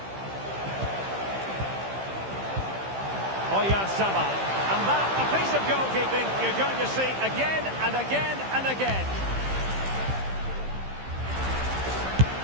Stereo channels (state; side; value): late; left; 15 ms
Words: Oyarzabal. And that, a piece of goalkeeping you're going to see again and again and again.